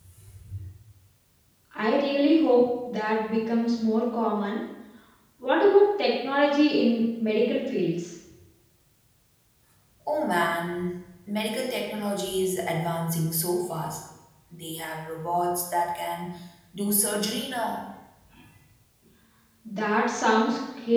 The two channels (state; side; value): identical; both; correlation 1.00